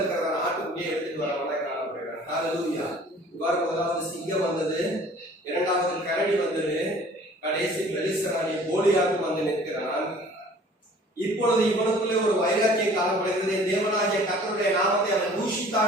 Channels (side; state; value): both; normal; correlation 0.50